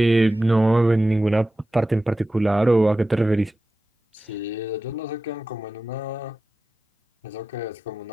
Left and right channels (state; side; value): normal; both; correlation 0.94